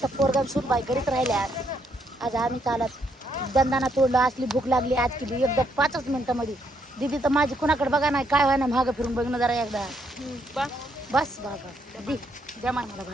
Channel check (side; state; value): both; normal; correlation 0.74